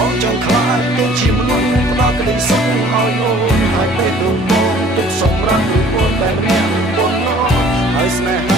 ងចង់ខ្លាចទៅជាមនុស្សផ្ដល់ក្តីសុខឲ្យអូនហើយពេលទៅបងទុកសម្រាប់ឬអូនតែម្នាក់បងហើយស្នេហ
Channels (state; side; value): normal; both; correlation 0.53